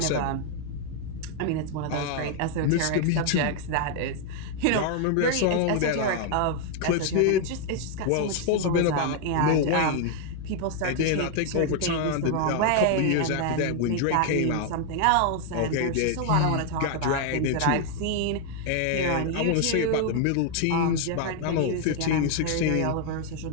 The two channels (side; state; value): both; different; correlation 0.00